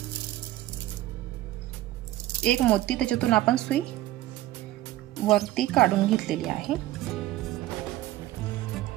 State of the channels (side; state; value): left; quieter; 15.7 dB